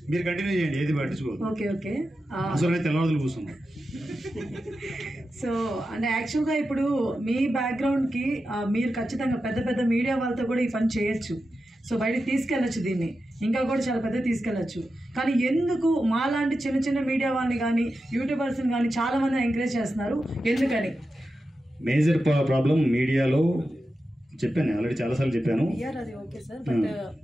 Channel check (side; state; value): both; normal; correlation 0.91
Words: మీరు కంటిన్యూ చేయండి, ఏది పట్టించుకోదు. Okay okay. అసలు అయితే తెల్లవారులు కూర్చున్నాం. సో అంటే యాక్చువల్గా ఇప్పుడు మీ బ్యాక్గ్రౌండ్కి మీరు ఖచ్చితంగా పెద్ద పెద్ద మీడియా వాళ్ళతో కూడా ఈ పని చేయొచ్చు. సో బయటకు తీసుకెళ్ళచ్చు, దీన్ని ఇంకా కూడా చాలా పెద్ద తీసుకెళ్ళచ్చు. కానీ ఎందుకు మాలాంటి చిన్న చిన్న మీడియా వాళ్ళని కానీ యూట్యూబర్స్ని కానీ చాలామంది ఎంకరేజ్ చేస్తున్నారు, ఎందుకని? మేజర్ ప్రాబ్లం మీడియాలో చెప్పాను, ఆల్రెడీ చాలాసార్లు చెప్పాను. పిఆర్ అది ఓకే సార్, బట్